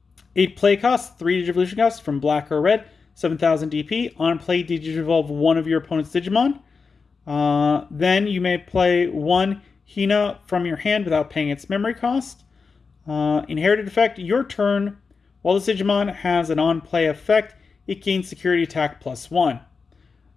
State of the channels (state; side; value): quieter; right; 4.9 dB